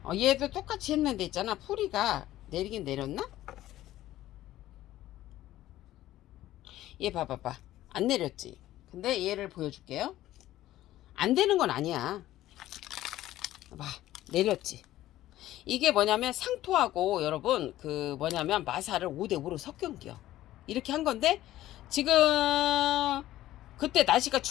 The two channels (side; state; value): right; quieter; 14.5 dB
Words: 얘도 똑같이 했는데 있잖아. 뿌리가 내리긴 내렸나? 얘 봐봐봐. 안 내렸지. 근데 얘를 보여줄게요. 안 되는 건 아니야. 봐, 내렸지. 이게 뭐냐면 상토하고 여러분 그 뭐냐면 마사를 5대5로 섞은겨. 이렇게 한 건데 지금 그때 날씨가